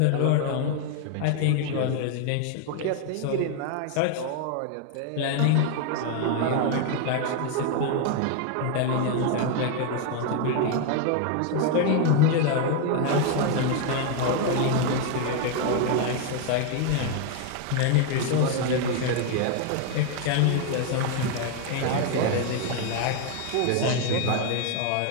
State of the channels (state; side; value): different; both; correlation 0.01